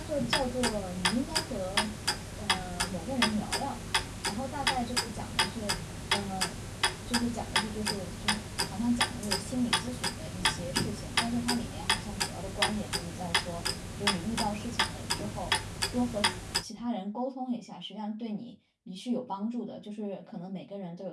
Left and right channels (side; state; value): both; identical; correlation 1.00